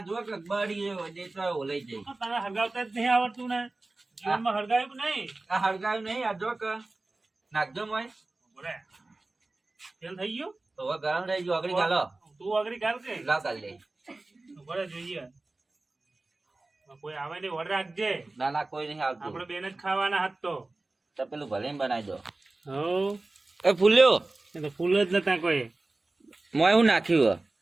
જો કે બળી ગયો દે તો ઓલાઈ જાય તને હરગાવતા જ નહીં આવડતું ને જીવનમાં હરગાવ્યું કે નહીં આ હળગાયું નહીં આ જો કે નાખજો મોય બોલે તેલ થઈ ગયું તો હવે ગરમ રહી ગયો આગળ ચાલો તું આગળ ગાલ કે લાવ કાઢ લે બોલે જોઈએ કોઈ આવે ને ઓર્ડર રાખજે ના ના કોઈ નહીં આવતું આપણે બેન જ ખાવાના હાથ તો પેલું ભલે બનાવી દો હો એ ફૂલ્યો એ તો ફૂલ જ નતા કોઈ મોય હું નાખ્યું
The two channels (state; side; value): quieter; left; 3.1 dB